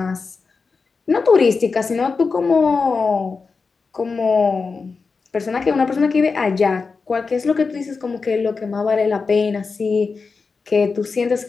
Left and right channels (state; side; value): quieter; right; 4.6 dB